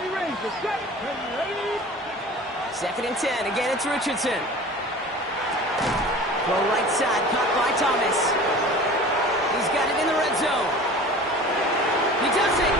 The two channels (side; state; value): both; normal; correlation 0.40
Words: 2nd and 10. Again, it's Richardson. Throw right side, caught by Thomas. He's got it in the red zone. He does it.